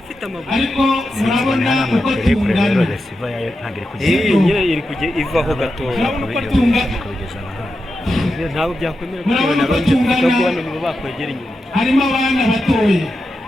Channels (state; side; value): normal; both; correlation 0.89